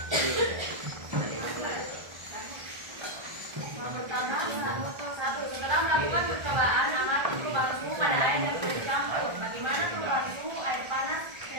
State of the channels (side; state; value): left; late; 1.4 ms